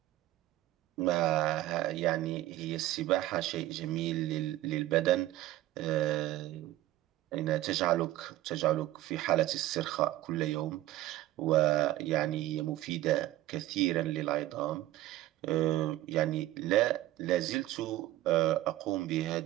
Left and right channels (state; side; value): quieter; left; 15.3 dB